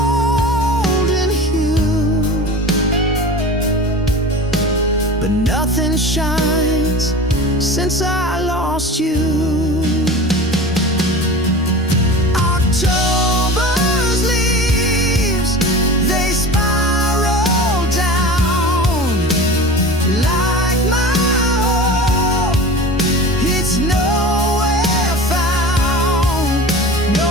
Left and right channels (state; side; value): normal; both; correlation 0.35